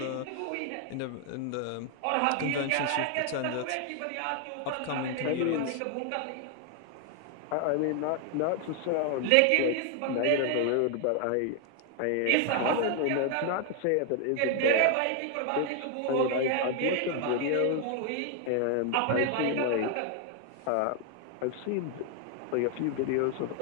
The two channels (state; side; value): different; both; correlation 0.00